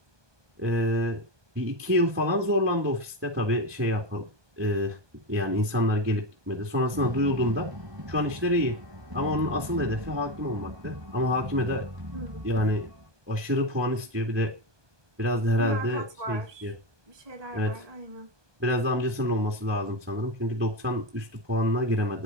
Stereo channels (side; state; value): left; late; 1.2 ms